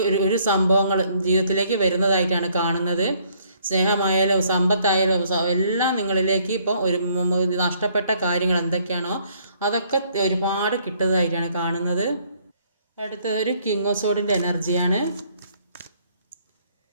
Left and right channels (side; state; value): both; inverted; correlation -0.65